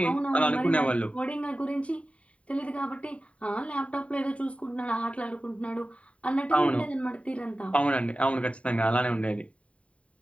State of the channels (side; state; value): right; late; 0.064 ms